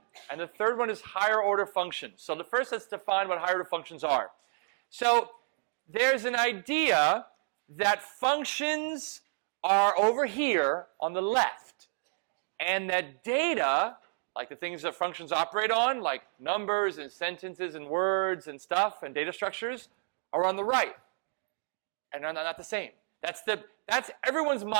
And the third one is higher order functions. So the first, let's define what higher order functions are. So there's an idea that functions are over here on the left, and that data, like the things that functions operate on, like numbers and sentences and words and stuff and data structures, are on the right. And they're not the same. That's everyone's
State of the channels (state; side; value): silent; left; 57 dB below the other